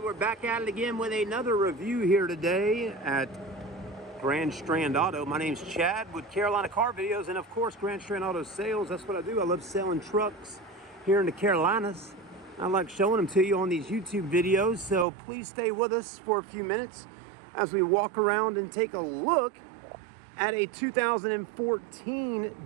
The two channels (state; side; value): drops out; left; at 15.1 s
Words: back at it again with another review here today at Grand Strand Auto. My name's Chad with Carolina Car Videos, and of course, Grand Strand Auto Sales. That's what I do. I love selling trucks here in the Carolinas. I like showing them to you on these YouTube videos, so please stay with us for a few minutes as we walk around and take a look at a 2014